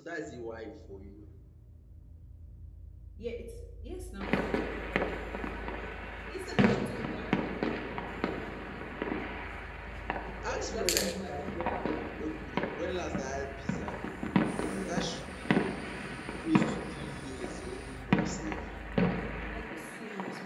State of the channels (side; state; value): both; identical; correlation 1.00